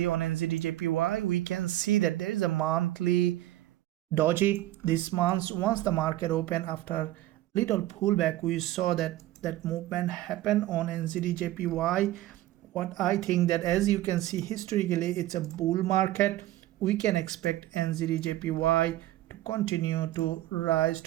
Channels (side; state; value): left; quieter; 15.1 dB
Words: on NZDJPY, we can see that there is a monthly doji this month. Once the market opened after little pullback, we saw that movement happen on NZDJPY. What I think that, as you can see, historically it's a bull market. We can expect NZDJPY to continue to rise